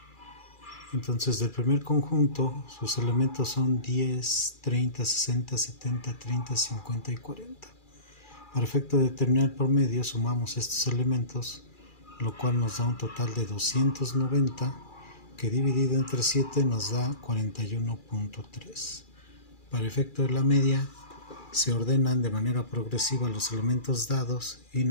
Entonces, del primer conjunto, sus elementos son 10, 30, 60, 70, 30, 50 y 40. Para efecto de determinar el promedio, sumamos estos elementos, lo cual nos da un total de 290, que dividido entre 7 nos da 41.3. Para efecto de la media, se ordenan de manera progresiva los elementos dados y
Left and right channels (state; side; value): late; right; 2.4 ms